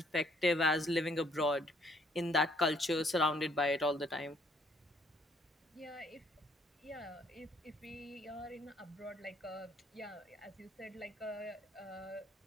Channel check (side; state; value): both; normal; correlation 0.65